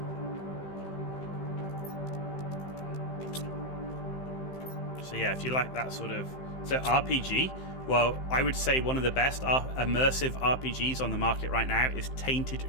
So yeah, if you like that sort of... So RPG, well, I would say one of the best immersive RPGs on the market right now is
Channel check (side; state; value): right; late; 15 ms